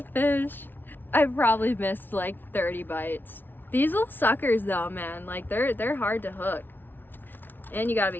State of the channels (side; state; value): right; late; 0.094 ms